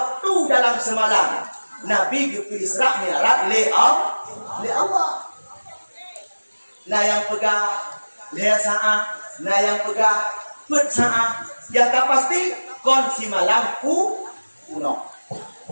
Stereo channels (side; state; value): both; inverted; correlation -1.00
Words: dalam semalam. Nabi ke Isra Mi'raj le Allah. Nah yang pegang le saat, nah yang pegang pet saat. Yang tak pasti kunci malam kuno.